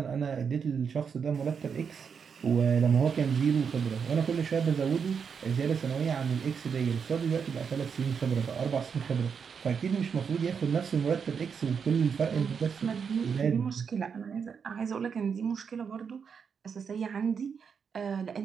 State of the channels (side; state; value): left; quieter; 6.5 dB